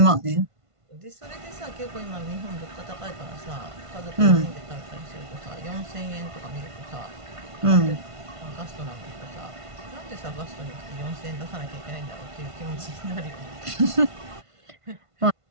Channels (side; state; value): left; late; 1.5 ms